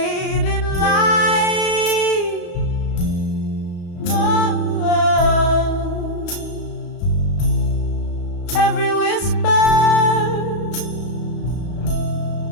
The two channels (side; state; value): right; late; 34 ms